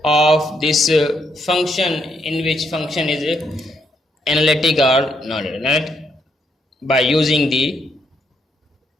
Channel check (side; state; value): both; normal; correlation 0.75